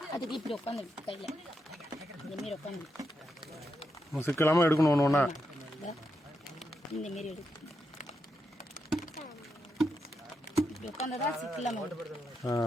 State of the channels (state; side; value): normal; both; correlation 0.84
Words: அதுக்கு இப்படி உட்காந்து கையில் இந்த மாரி உட்காந்து சிக்கு இல்லாமல் எடுக்கணும். ஒன்று ஒன்றா இந்த மாரி எடுக்கணும். இப்படி உட்காந்துதான் சிக்கு இல்லாமல் விட்டு